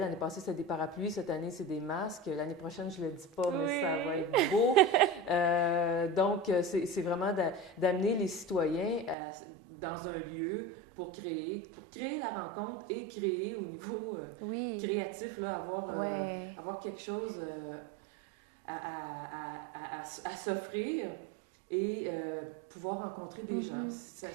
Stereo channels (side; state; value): left; drops out; at 9.2 s